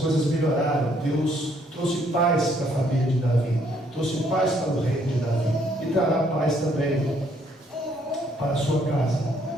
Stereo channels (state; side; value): normal; both; correlation 0.68